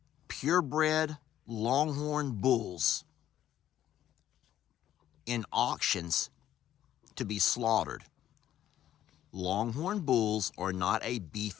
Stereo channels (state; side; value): quieter; right; 11.9 dB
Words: purebred Longhorn bulls in auctions to be slaughtered. Longhorn bulls are not a